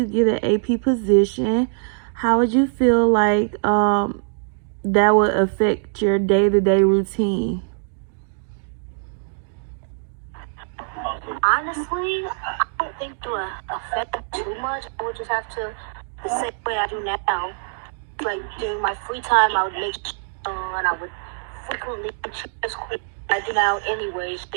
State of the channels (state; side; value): silent; left; digital silence